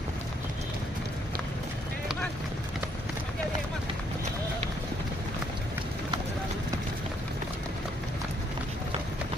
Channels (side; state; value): both; normal; correlation 0.70